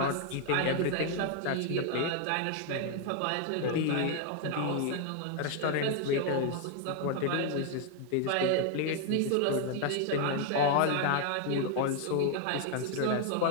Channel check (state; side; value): different; both; correlation 0.00